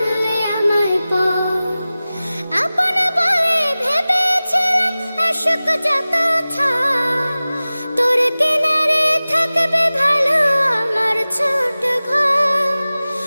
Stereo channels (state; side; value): inverted; both; correlation -0.97